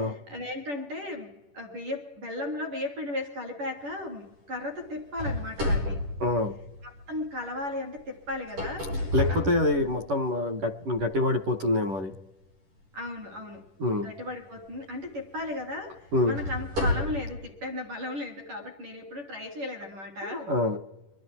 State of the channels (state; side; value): late; left; 10 ms